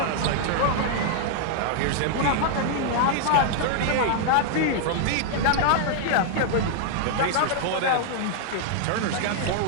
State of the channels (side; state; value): both; different; correlation 0.00